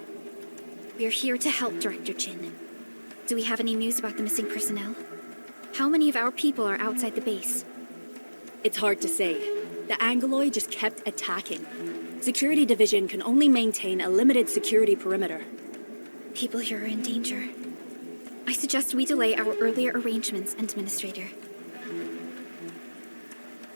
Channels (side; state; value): both; inverted; correlation -1.00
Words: We're here to help, Director Chin. Do we have any news about the missing personnel? How many of our people are outside the base? It's hard to say. The Angoloi just kept attacking. Security Division can only maintain a limited security perimeter. People here are in danger. I suggest we delay our earlier arrangements, Administrator.